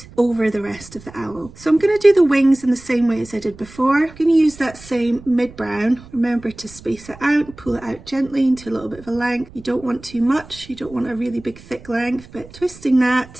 over the rest of the owl. So I'm going to do the wings in the same way as I did before. I'm going to use that same mid brown. Remember to space it out, pull it out gently into a little bit of a length. You don't want too much, you don't want a really big thick length, but twisting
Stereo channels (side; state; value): right; noise; rumble, 20 dB below the sound